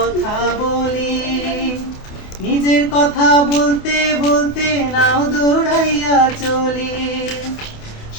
বলি, নিজের কথা বলতে বলতে নাও দৌড়াইয়া চলি।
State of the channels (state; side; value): late; right; 28 ms